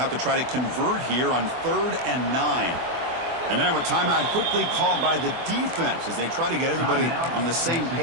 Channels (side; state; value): left; late; 24 ms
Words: to try to convert here on 3rd and 9. And now a timeout quickly called by the defense as they try to get everybody on the same